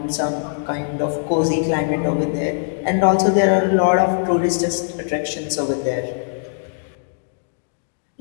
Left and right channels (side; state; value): right; silent; digital silence